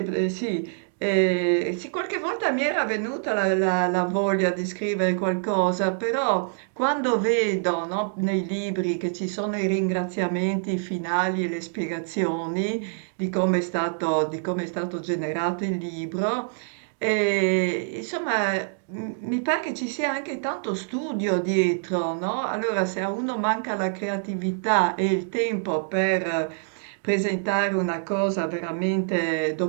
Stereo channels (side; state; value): left; silent; digital silence